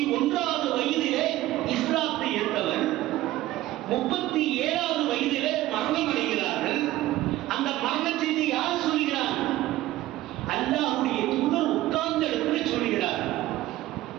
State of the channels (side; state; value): left; quieter; 15.8 dB